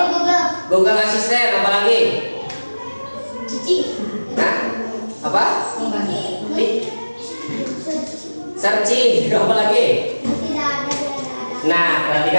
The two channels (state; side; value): inverted; both; correlation -1.00